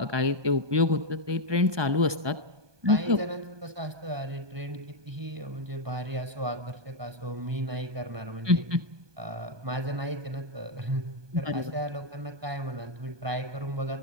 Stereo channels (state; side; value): late; left; 1.2 ms